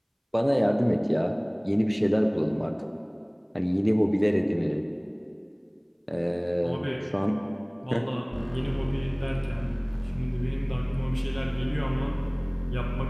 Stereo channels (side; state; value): both; identical; correlation 1.00